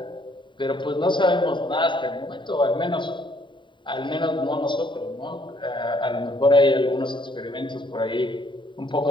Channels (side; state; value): right; late; 0.23 ms